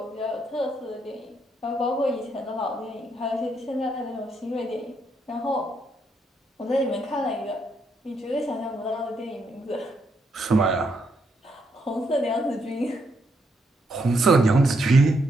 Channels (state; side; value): normal; both; correlation 0.77